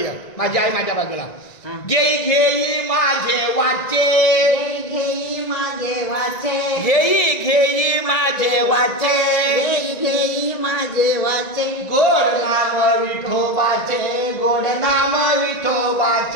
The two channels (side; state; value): right; late; 1.9 ms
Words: माझी आई माझ्या बाजूला. घेई घेई माझे वाचे, घेई माझे वाचे, घेई घेई माझे वाचे, घेई घेई माझे वाचे. गोड नाम विठोबाचे, गोड नाम